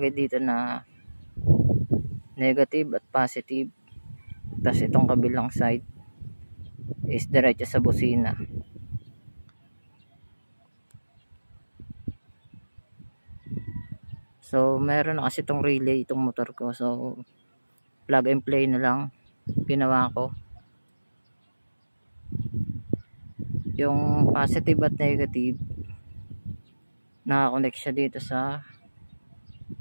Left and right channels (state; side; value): inverted; both; correlation -1.00